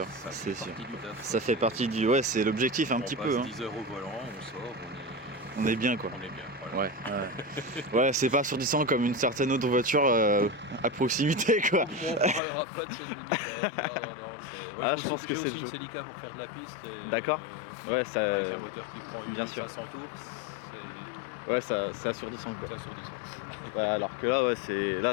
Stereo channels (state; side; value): drops out; right; at 12.4 s